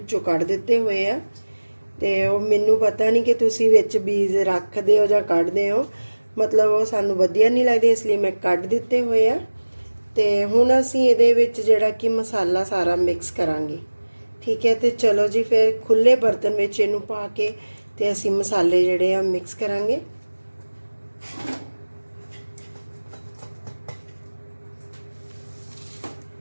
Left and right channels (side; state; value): both; inverted; correlation -1.00